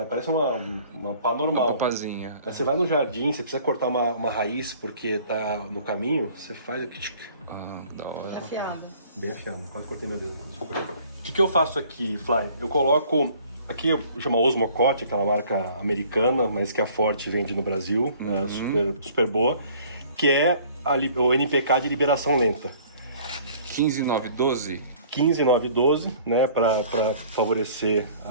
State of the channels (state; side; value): inverted; both; correlation -0.53